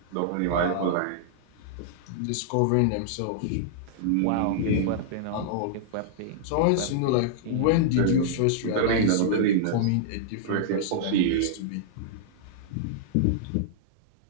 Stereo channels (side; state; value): both; different; correlation -0.01